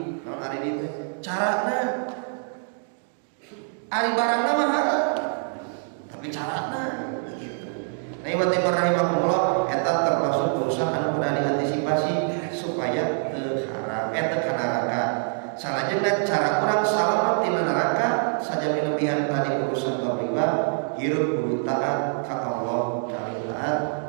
Haram aridi itu carana ari barangna mah haram, tapi carana gitu. Nah, ibu timur rahimahullah eta termasuk urusan anu kudu diantisipasi supaya teu haram teu kana neraka. Salajengna cara urang salamet tina neraka saja milebihan tadi urusan bab riba, hirup kudu taat ka Allah, kali taat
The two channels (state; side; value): silent; left; 60 dB below the other